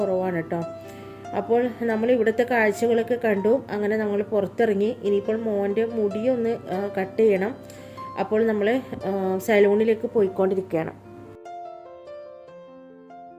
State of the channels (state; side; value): identical; both; correlation 1.00